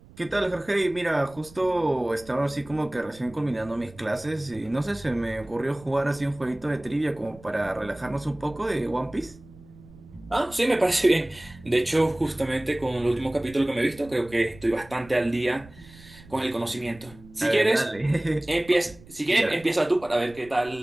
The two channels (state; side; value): noise; right; rumble, 22 dB below the sound